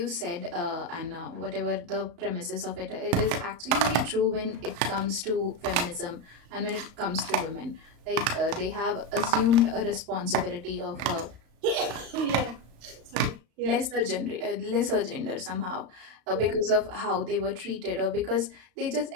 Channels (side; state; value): left; late; 35 ms